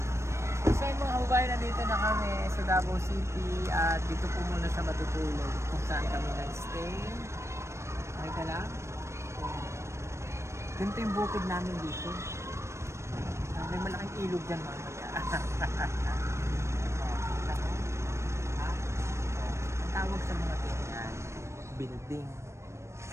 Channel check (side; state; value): left; late; 0.13 ms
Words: So yung mga kababayan, nandito na kami sa Davao City at dito po muna siya matutulog kung saan kami nag-stay. Okay ka lang? Ganito yung bukid namin dito. May malaking ilog dyan mamaya. Ang tawag sa mga ganyan, building.